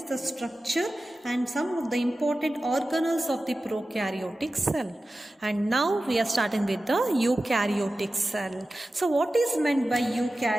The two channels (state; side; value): normal; both; correlation 0.95